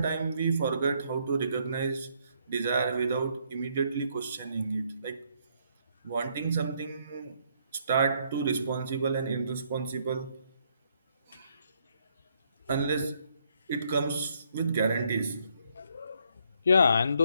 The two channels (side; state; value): both; inverted; correlation -0.71